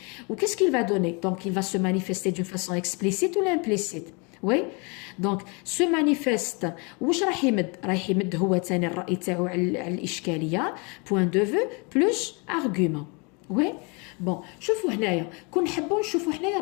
و qu'est-ce qu'il va donner? donc il va se manifester d'une façon explicite ou implicite. oui donc se manifeste واش راح يمد هو ثاني الرأي تاعو على الإشكالية point de vue plus argument. oui بون شوفوا هنايا كون نحبوا نشوفوا هنايا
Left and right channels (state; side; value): quieter; right; 31.6 dB